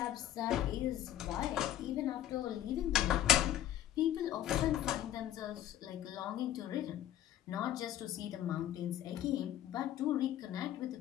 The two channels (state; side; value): quieter; right; 12.0 dB